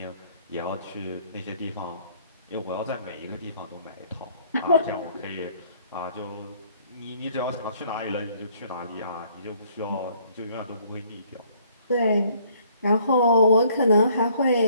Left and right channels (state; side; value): inverted; both; correlation -0.62